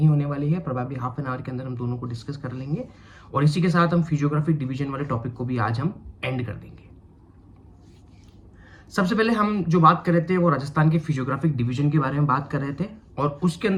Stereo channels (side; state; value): both; identical; correlation 1.00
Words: होने वाली है, प्रोबेबली हाफ एन आवर के अंदर हम दोनों को डिस्कस कर लेंगे और इसी के साथ हम फिजियोग्राफिक डिवीजन वाले टॉपिक को भी आज हम एंड कर देंगे। सबसे पहले हम जो बात कर रहे थे वो राजस्थान के फिजियोग्राफिक डिवीजन के बारे में बात कर रहे थे और उसके